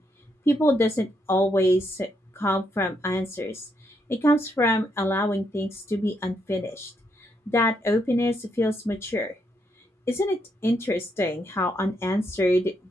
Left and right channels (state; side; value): normal; both; correlation 0.77